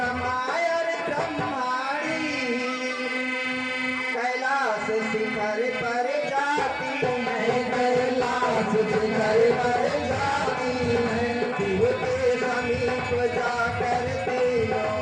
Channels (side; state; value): both; identical; correlation 1.00